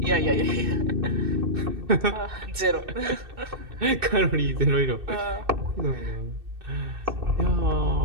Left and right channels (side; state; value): left; late; 2.6 ms